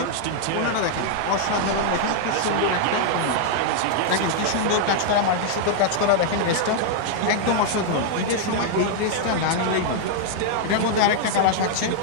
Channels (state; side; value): different; both; correlation -0.01